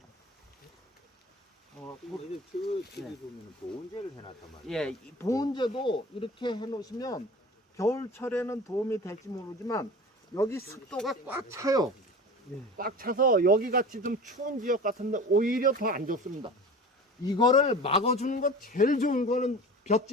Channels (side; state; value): both; normal; correlation 0.36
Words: 근데 저기 보면 보온제를 해놨단 말이에요. 예, 이 보온제도 이렇게 해놓으시면 겨울철에는 도움이 될지 모르지만 여기 습도가 꽉 차요. 꽉 차서 여기 같이 좀 추운 지역 같은데 오히려 더 안 좋습니다. 이거를 막아주는 것 제일 좋은 거는